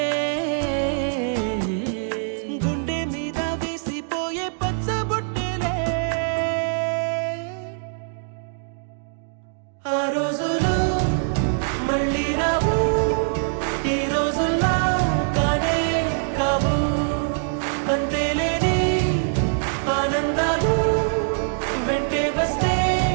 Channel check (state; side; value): silent; left; digital silence